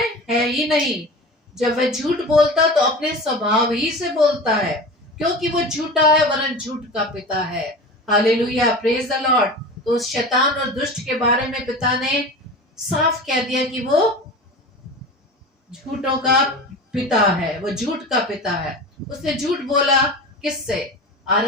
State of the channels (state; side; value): normal; both; correlation 0.32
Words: है ही नहीं। जब वह झूठ बोलता तो अपने स्वभाव ही से बोलता है, क्योंकि वो झूठा है वरन झूठ का पिता है। Hallelujah, praise the Lord. तो उस शैतान और दुष्ट के बारे में पिता ने साफ कह दिया कि वो झूठों का पिता है, वो झूठ का पिता है। उसने झूठ बोला किससे?